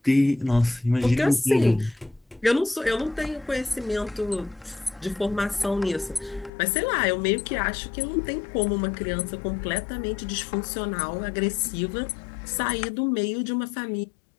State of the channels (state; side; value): drops out; right; at 6.5 s